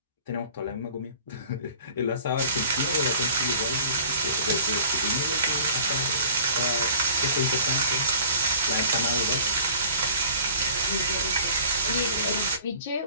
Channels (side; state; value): both; inverted; correlation -0.47